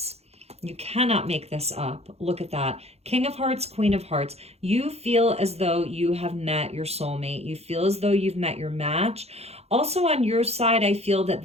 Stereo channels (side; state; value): left; late; 0.30 ms